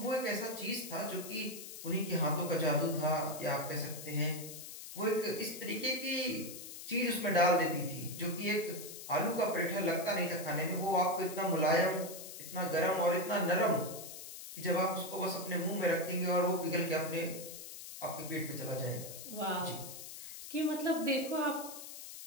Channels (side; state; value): left; noise; hiss, 11 dB below the sound